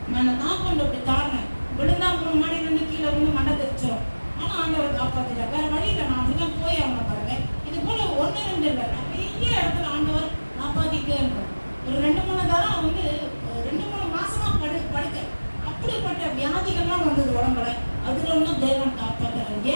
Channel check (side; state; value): both; inverted; correlation -1.00